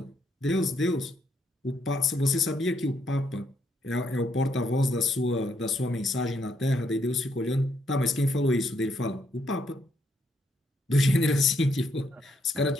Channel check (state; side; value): normal; both; correlation 0.74